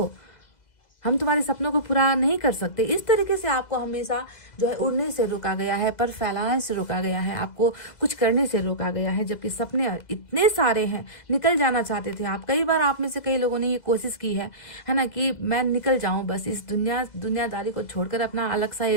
हम तुम्हारे सपनों को पूरा नहीं कर सकते। इस तरीके से आपको हमेशा जो है उड़ने से रोका गया है, पर फैलाने से रोका गया है, आपको कुछ करने से रोका गया है। जबकि सपने इतने सारे हैं, निकल जाना चाहते थे आप। कई बार आप में से कई लोगों ने ये कोशिश की है ना, कि मैं निकल जाऊं, बस इस दुनियादारी को छोड़कर अपना अलग सा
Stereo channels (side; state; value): right; late; 2.0 ms